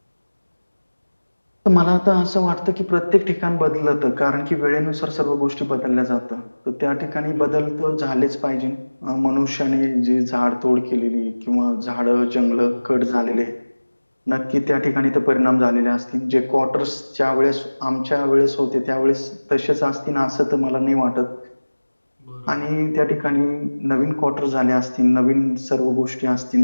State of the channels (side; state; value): both; inverted; correlation -1.00